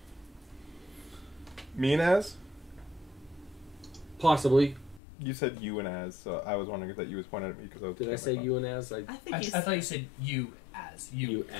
Me and Az? Possibly. You said you and Az, so I was wondering if that you was pointing at me because I was. Did I say you and as? I think I you thought you said you as. You, as.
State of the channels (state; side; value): drops out; right; at 5.0 s